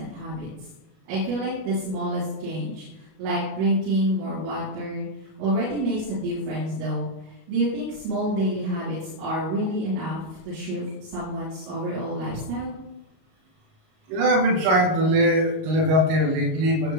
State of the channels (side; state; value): left; late; 38 ms